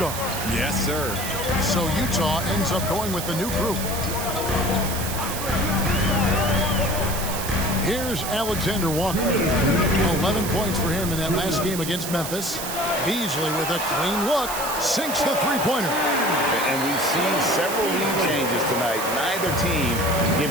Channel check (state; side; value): noise; right; hiss, 6 dB below the sound